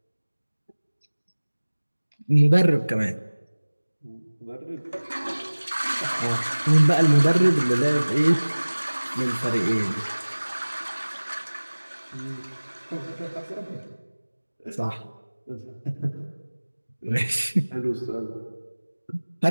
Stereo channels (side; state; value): both; inverted; correlation -1.00